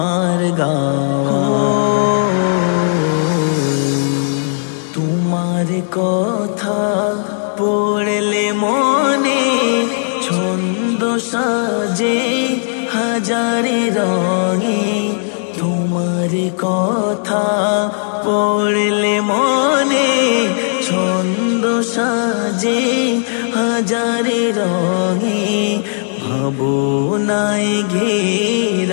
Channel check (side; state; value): right; silent; digital silence